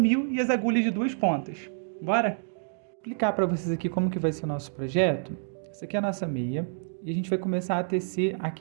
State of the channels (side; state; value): left; silent; digital silence